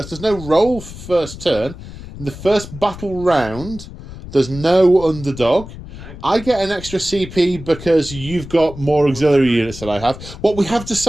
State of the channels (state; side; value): noise; left; rumble, 13 dB below the sound